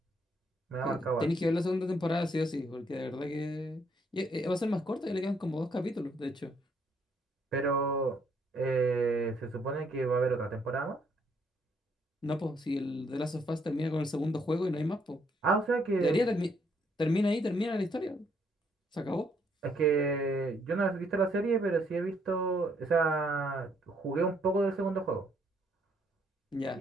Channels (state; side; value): normal; both; correlation 0.70